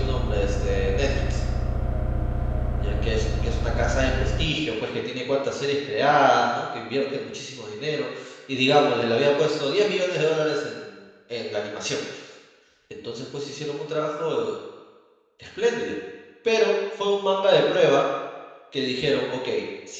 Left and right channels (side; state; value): both; identical; correlation 1.00